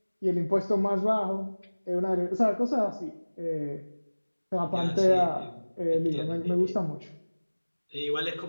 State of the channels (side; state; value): both; inverted; correlation -1.00